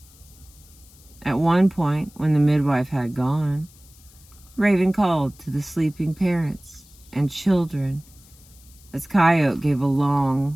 At one point, when the midwife had gone, Raven called to the sleeping parents and children as Coyote gave a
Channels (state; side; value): noise; left; hiss, 25 dB below the sound